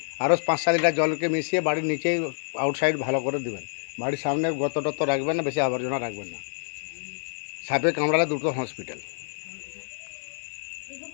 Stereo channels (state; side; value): silent; right; 60 dB below the other